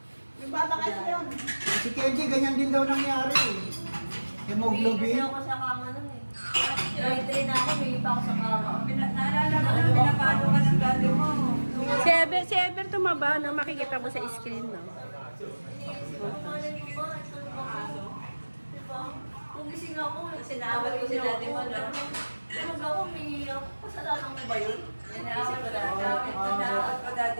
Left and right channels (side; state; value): both; inverted; correlation -1.00